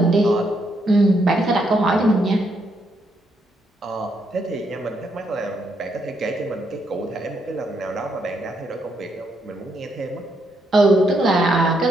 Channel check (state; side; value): normal; both; correlation 0.77